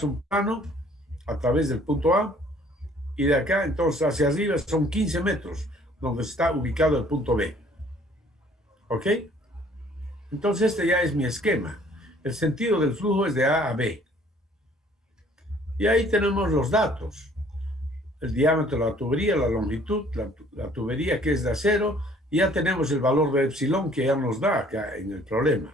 un plano a través del punto A, y de acá, entonces, hacia arriba son 15 metros, donde está ubicado el punto B. ¿Ok? Entonces, este ya es mi esquema. El sentido del flujo es de A a B. Y ahí tenemos los datos. El diámetro de la tubería, la longitud, la tubería que es de acero, y ya tenemos el valor de epsilon que ya nos da acá en el problema.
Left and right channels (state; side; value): normal; both; correlation 0.57